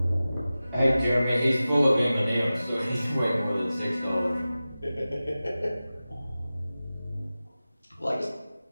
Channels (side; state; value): both; inverted; correlation -0.95